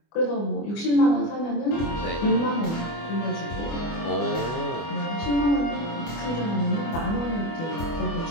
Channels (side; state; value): right; late; 24 ms